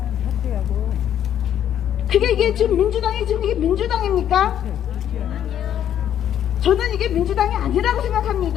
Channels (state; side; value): quieter; right; 10.2 dB